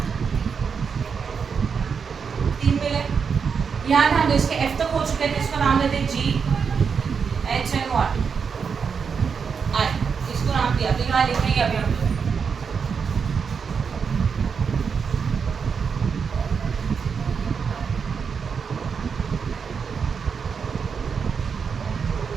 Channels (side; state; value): left; quieter; 6.1 dB